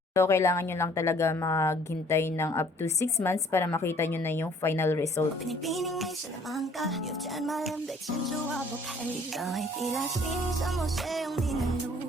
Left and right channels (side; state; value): both; normal; correlation 0.58